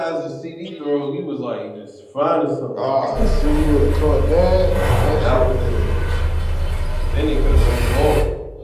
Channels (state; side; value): identical; both; correlation 1.00